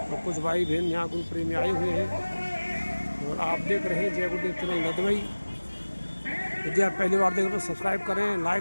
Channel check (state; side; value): inverted; both; correlation -1.00